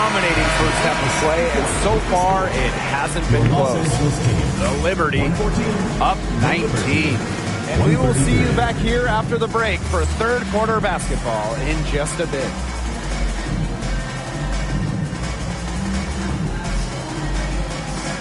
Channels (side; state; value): both; identical; correlation 1.00